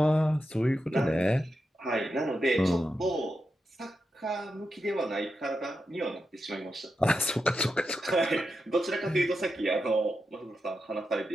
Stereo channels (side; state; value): both; normal; correlation 0.88